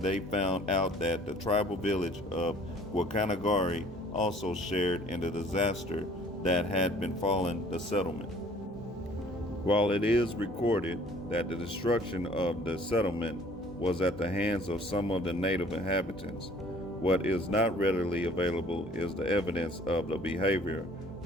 they found out that the tribal village of Guacanagari also shared in the disaster that had befallen the settlement. While it is recorded that the destruction of the settlement was at the hands of some of the native inhabitants, what is not readily available is the evidence of the behavior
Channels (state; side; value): normal; both; correlation 0.55